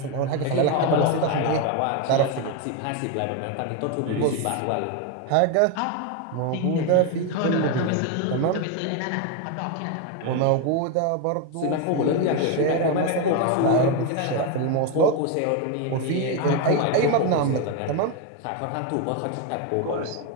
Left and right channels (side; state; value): both; different; correlation 0.02